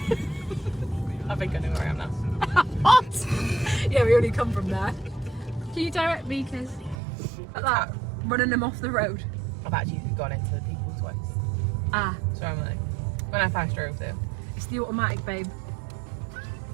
I think I know where I am now. What? Yeah, we only come from there. Can you direct me, Kiz? Like that, running them off the road. I've actually gone into the people twice. Ah. So I'm like, when I first drove there. It's the automatic, babe.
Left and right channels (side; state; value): left; drops out; at 7.0 s